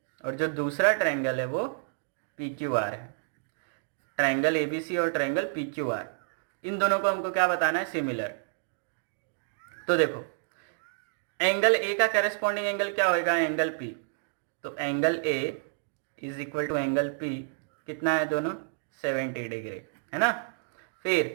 और जो दूसरा ट्रायंगल है वो PQR है। ट्रायंगल ABC और ट्रायंगल PQR, इन दोनों को हमको क्या बताना है सिमिलर। तो देखो एंगल A का करस्पॉन्डिंग एंगल क्या होएगा एंगल P, तो angle A is equal to angle P कितना है दोनों 70 डिग्री, है ना।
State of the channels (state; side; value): silent; left; digital silence